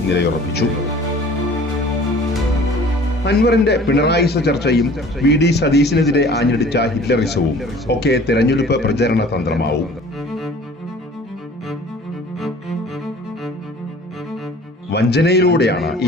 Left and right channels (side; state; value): both; normal; correlation 0.48